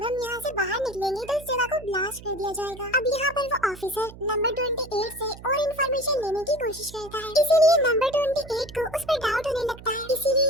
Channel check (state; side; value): noise; right; hum, 17 dB below the sound